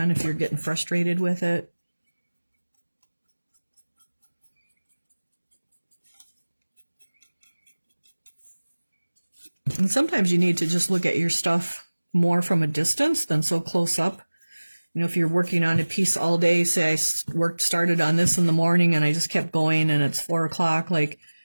if you're getting frustrated with it. And sometimes you need to just look at your stuff more from a distance than so close up. You know, if you're working on a piece all day, say I started on this in the morning and I just kept going and it's 4 o'clock, like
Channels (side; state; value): both; inverted; correlation -1.00